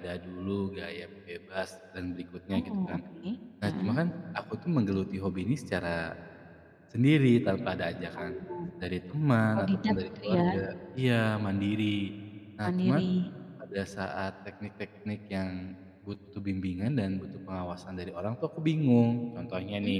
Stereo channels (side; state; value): both; identical; correlation 1.00